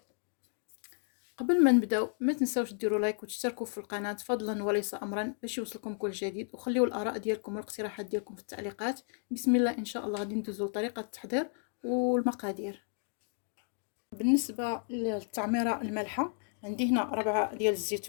قبل ما نبداو ما تنساوش ديروا لايك وتشتركوا في القناه فضلا وليس امرا باش يوصلكم كل جديد، وخليوا الاراء ديالكم والاقتراحات ديالكم في التعليقات. بسم الله. ان شاء الله غادي ندوزو لطريقه التحضير والمقادير. بالنسبه للتعميره المالحه، عندي هنا 4 ديال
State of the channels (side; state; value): right; silent; 56 dB below the other